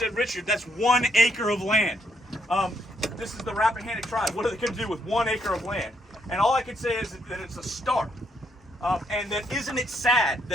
Richard, that's 1 acre of land. This is the Rappahannock tribe. What are they going to do with 1 acre of land? And all I can say is that it's a start. And that isn't it sad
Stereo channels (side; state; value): both; normal; correlation 0.74